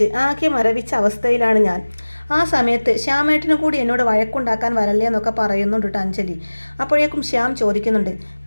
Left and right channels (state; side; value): inverted; both; correlation -1.00